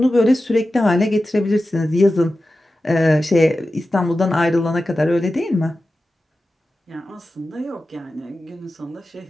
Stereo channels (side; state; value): both; normal; correlation 0.93